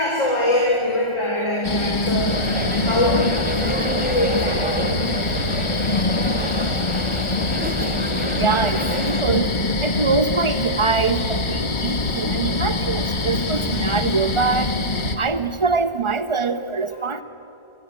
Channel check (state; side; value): late; right; 1.4 ms